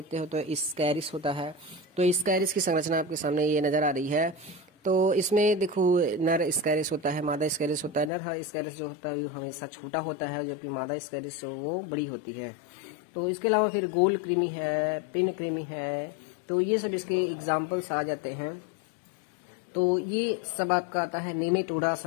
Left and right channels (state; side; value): drops out; right; at 8.1 s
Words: हो तो स्कैरिस होता है। तो स्कैरिस की संरचना आपके सामने ये नजर आ रही है। तो इसमें देखो नर स्कैरिस होता है, मादा स्कैरिस होता है। नर स्कैरिस जो होता है वो हमेशा छोटा होता है, जबकि मादा स्कैरिस वो बड़ी होती है। तो इसके अलावा फिर गोल कृमि है, पिन कृमि है, तो ये सब इसके एग्जाम्पल्स आ जाते हैं। तो ये सब आपका आता है नीमेटोडा